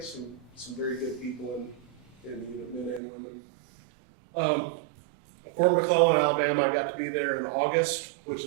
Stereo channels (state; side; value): drops out; left; at 3.0 s